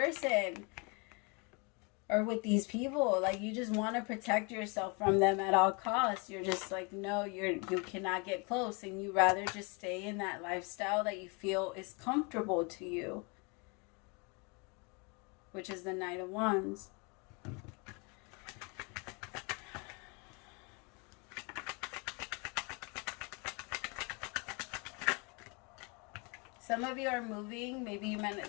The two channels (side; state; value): right; quieter; 31.5 dB